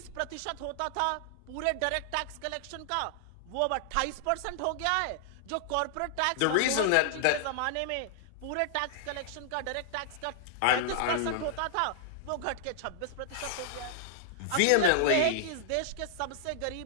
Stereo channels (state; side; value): different; both; correlation -0.01